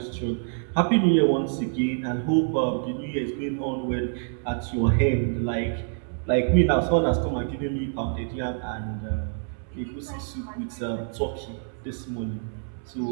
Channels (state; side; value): silent; left; 61 dB below the other